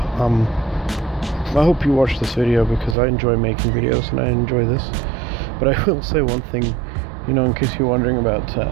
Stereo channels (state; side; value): drops out; left; at 3.0 s